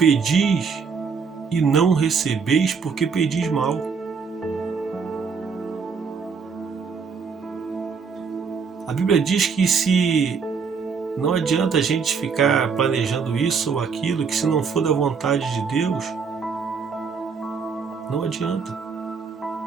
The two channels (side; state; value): left; quieter; 5.6 dB